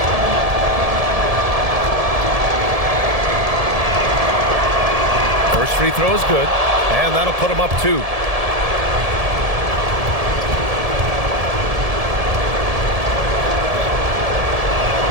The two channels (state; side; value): late; left; 1.7 ms